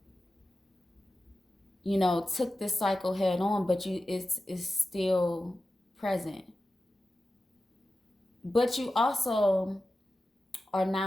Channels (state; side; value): normal; both; correlation 0.93